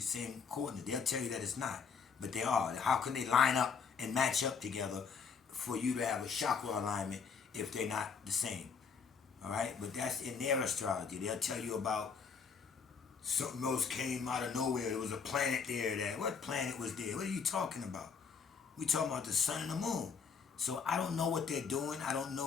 coordinate. They'll tell you that it's not, but they are. How can they line up and match up together for you to have a chakra alignment if they're not the same? All right, but that's in their astrology. They'll tell you about something else came out of nowhere. There was a planet there. That what planet was there? What are you talking about? We talking about the sun and the moon. So I don't know what they're doing. I don't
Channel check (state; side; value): quieter; right; 5.9 dB